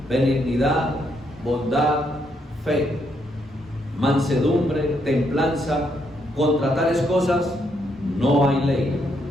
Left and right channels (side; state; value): both; normal; correlation 0.76